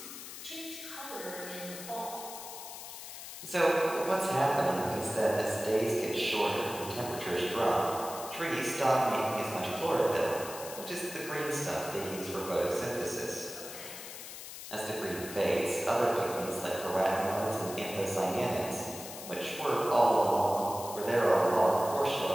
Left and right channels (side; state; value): left; noise; hiss, 11 dB below the sound